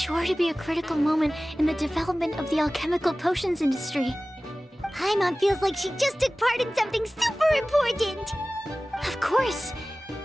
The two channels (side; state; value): both; normal; correlation 0.97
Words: sure to be a critical moment in the development of the alchemical potions industry. Paimon feels like she just took part in something super important! Of course!